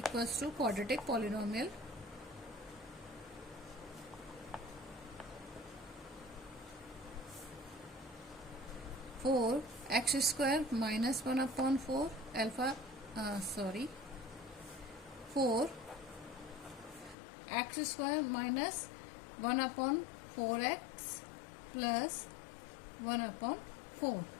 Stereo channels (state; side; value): drops out; right; at 17.2 s